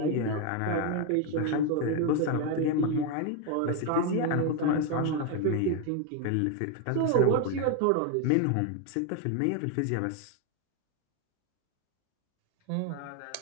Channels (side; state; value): both; different; correlation 0.01